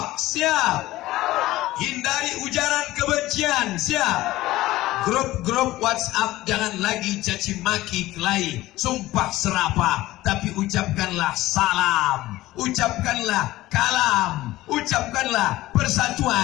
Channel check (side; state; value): right; quieter; 16.9 dB